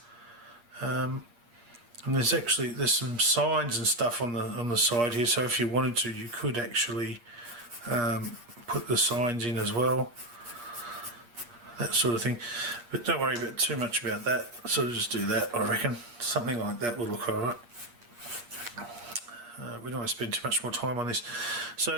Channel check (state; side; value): late; left; 8.5 ms